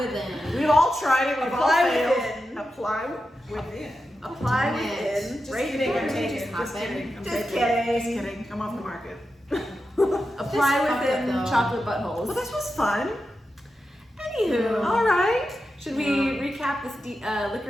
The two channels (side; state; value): both; normal; correlation 0.90